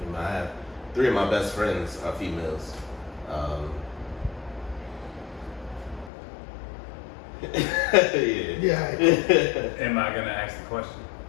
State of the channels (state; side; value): drops out; right; at 6.1 s